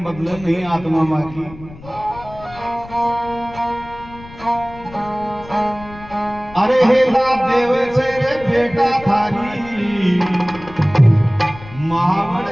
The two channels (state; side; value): noise; left; rumble, 18 dB below the sound